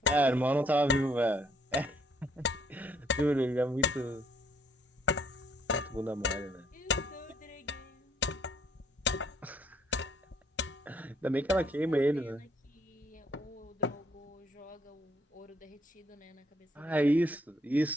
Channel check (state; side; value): normal; both; correlation 0.67